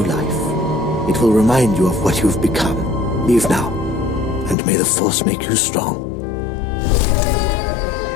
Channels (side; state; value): right; drops out; at 4.5 s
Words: life. It will remind you of what you've become. Leave now, and may the Force make you strong.